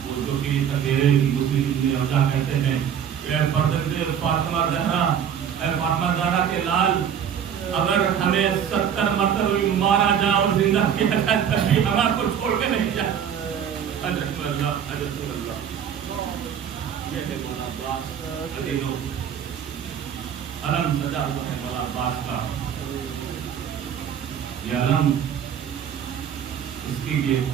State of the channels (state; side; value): quieter; left; 8.6 dB